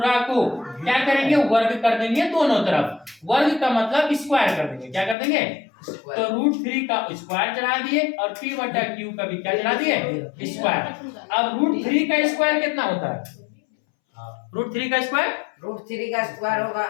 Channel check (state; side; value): drops out; right; at 5.2 s